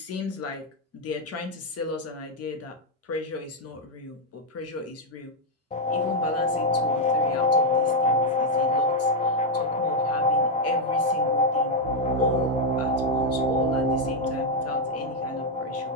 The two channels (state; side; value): normal; both; correlation 0.00